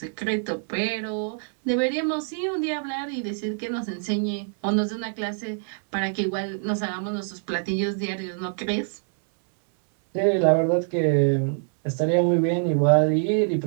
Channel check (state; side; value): silent; left; 61 dB below the other